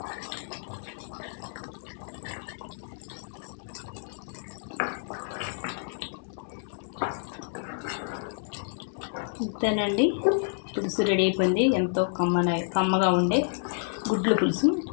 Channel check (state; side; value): silent; right; digital silence